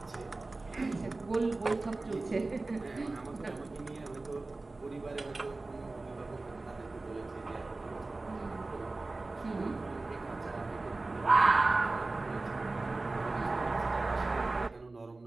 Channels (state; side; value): quieter; left; 3.3 dB